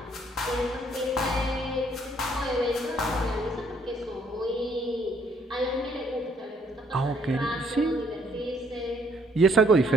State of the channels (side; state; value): both; normal; correlation 0.66